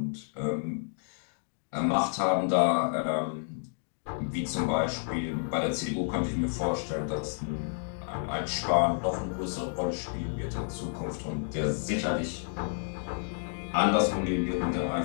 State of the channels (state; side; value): silent; right; digital silence